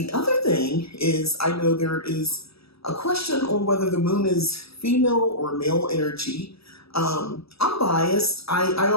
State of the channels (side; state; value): right; late; 0.77 ms